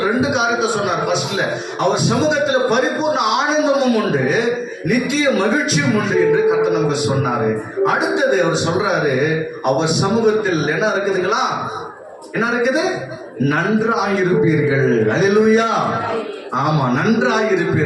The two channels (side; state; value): both; identical; correlation 1.00